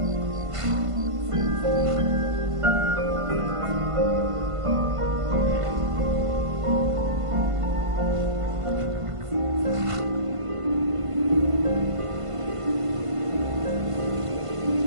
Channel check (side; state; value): left; late; 1.5 ms